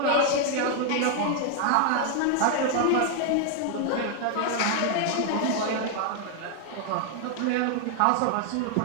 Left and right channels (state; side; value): different; both; correlation 0.00